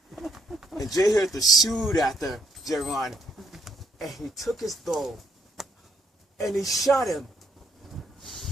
And Jehu pursued after Jeron, and he took his bow and he shot him.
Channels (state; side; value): normal; both; correlation 0.72